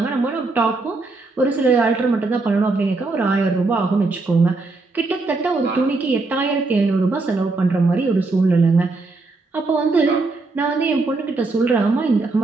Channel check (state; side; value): quieter; left; 3.5 dB